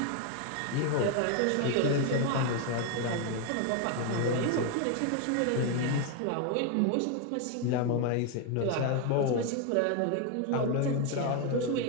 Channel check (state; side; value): different; both; correlation 0.01